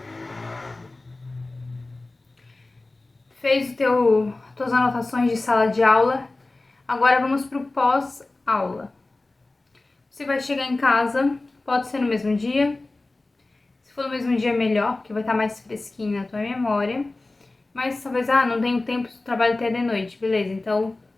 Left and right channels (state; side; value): quieter; right; 3.1 dB